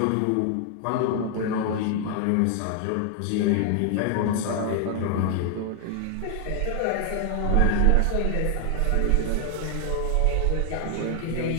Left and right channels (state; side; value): different; both; correlation 0.00